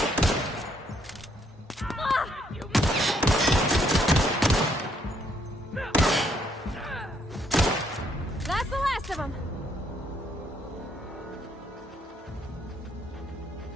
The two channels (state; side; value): normal; both; correlation 0.70